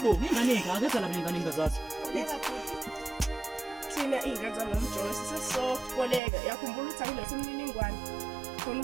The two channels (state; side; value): drops out; left; at 6.2 s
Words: aketha la ingane engazazi. Koleka futhi. Thina ingane zanomjoyi sisesokoleka. Yakhumbula ukuthi akulethe imniningwane. Khona